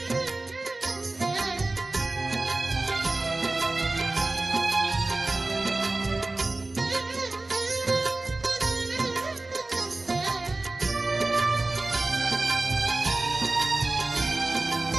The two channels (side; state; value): left; quieter; 3.0 dB